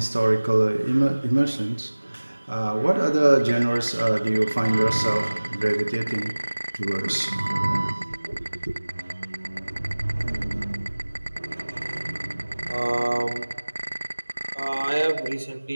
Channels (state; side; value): inverted; both; correlation -1.00